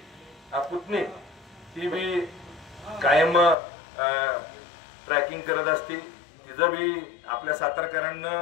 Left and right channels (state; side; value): drops out; right; at 3.6 s